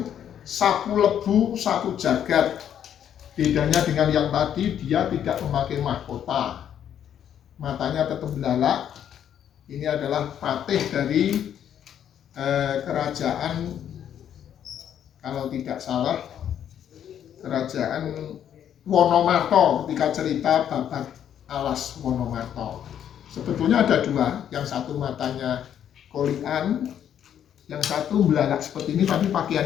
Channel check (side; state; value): right; quieter; 9.6 dB